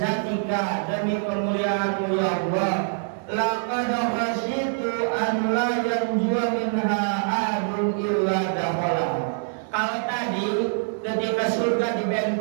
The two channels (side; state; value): left; silent; digital silence